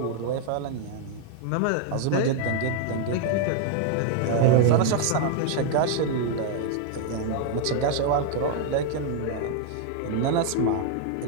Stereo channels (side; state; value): both; different; correlation 0.00